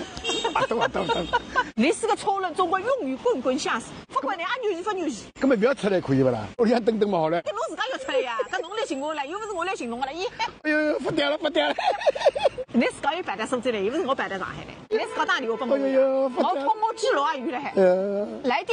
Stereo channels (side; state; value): both; identical; correlation 1.00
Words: 等。你是个超人，总归用语滚滚相似，不管你俺牛不牛气。根本不要出来可以不啦？我想等嘛好了。跟侬自家要出来呀，跟侬来寻我了，又不是我来寻侬的了，咦？哎呦，不掉了。你自家有办在苏州来，又不是我办在上海来，你自家打电话给我。哎呦，我通过记录啊，有了还。来